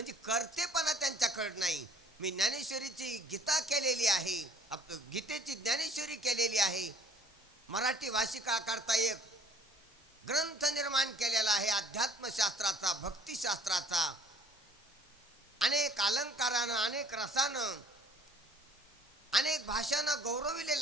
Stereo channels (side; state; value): both; normal; correlation 0.55